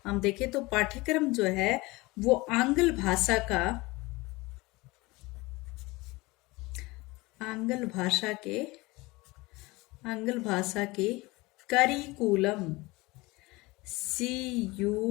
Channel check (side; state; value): right; quieter; 22.5 dB